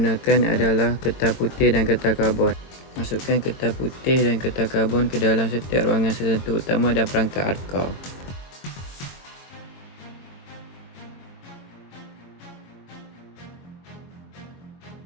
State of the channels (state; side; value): late; right; 22 ms